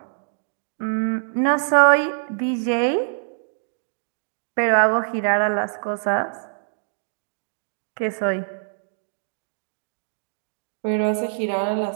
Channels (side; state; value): left; silent; digital silence